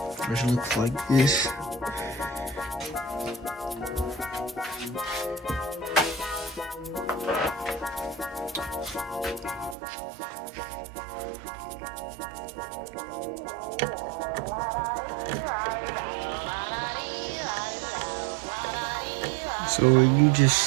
which looks like this. So you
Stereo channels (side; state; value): left; drops out; at 9.8 s